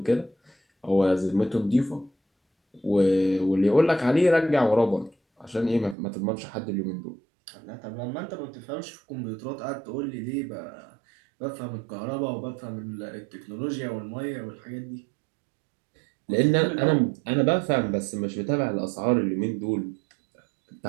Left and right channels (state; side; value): drops out; left; at 6.0 s